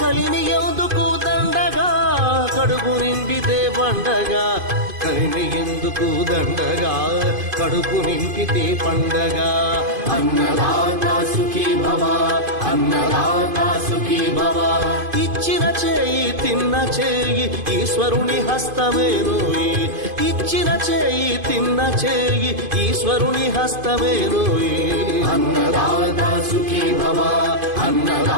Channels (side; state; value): left; late; 2.5 ms